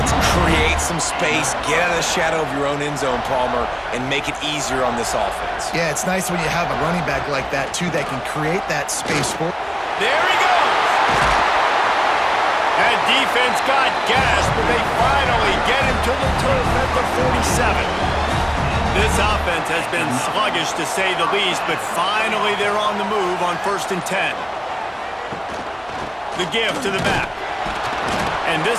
Create some space, get out of the shadow of your own end zone, Palmer, and make it easier on this offense. Yeah, it's nice when you have a running back like that, too, that can create that space for. There he goes! That defense got gas, but they finally get him to the turf at the 47. This offense has been sluggish, to say the least, but finally they're on the move on 1st and 10. The give to the back. And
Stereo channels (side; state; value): both; identical; correlation 1.00